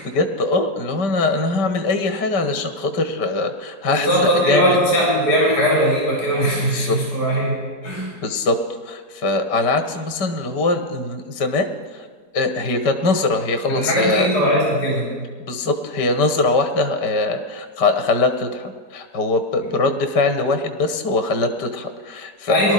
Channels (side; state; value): right; late; 5.1 ms